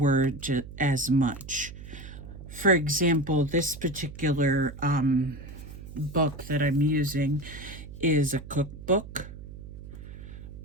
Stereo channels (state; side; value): noise; right; hum, 13 dB below the sound